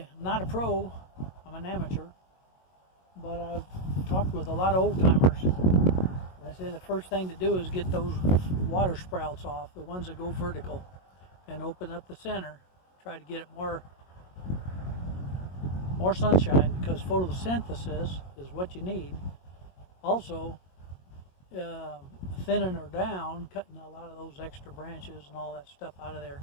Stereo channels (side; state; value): right; late; 22 ms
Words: I'm not a pro, I'm an amateur, but I've talked with a lot of old timers. I say the first thing to do is get those water sprouts off, the ones that go vertical, and open up the center. Try to get it more sunshine, because photosynthesis is what you need. Also, thinning her down, cutting a lot of those extra branches and all that stuff out of there